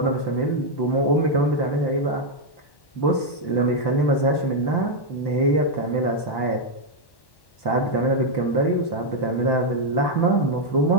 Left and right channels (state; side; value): late; right; 1.1 ms